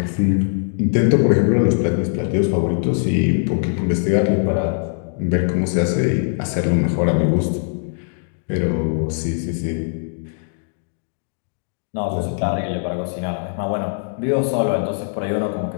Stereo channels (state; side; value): silent; right; digital silence